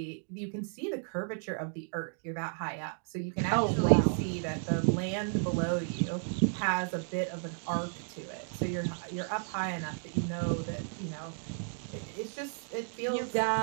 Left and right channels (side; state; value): left; silent; 56 dB below the other